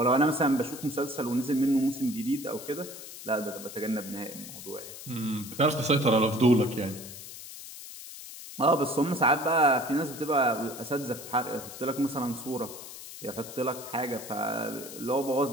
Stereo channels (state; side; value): noise; left; hiss, 13 dB below the sound